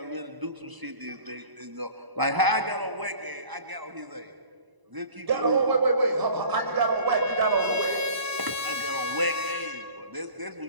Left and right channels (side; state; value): left; late; 1.0 ms